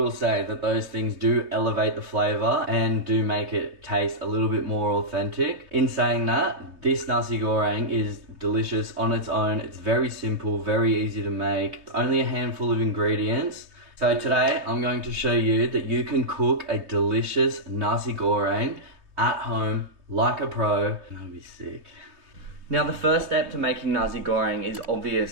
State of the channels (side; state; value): left; late; 3.2 ms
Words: say that those things do elevate the flavor and do make it taste a little bit more authentic. In saying that, this nasi goreng is delicious on its own. It's very simple, very easy to make. It's only a handful of ingredients. So today I'm going to show you that you can cook a delicious nasi goreng at home like a pro. That'll be sick. Now the first step to making nasi goreng is